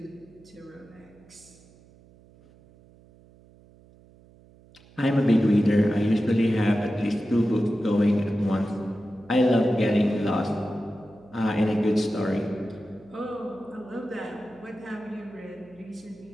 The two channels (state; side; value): noise; right; hum, 26 dB below the sound